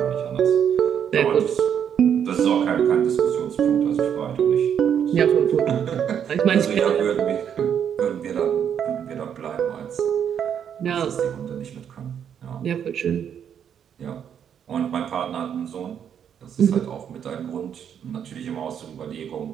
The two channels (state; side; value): quieter; left; 8.5 dB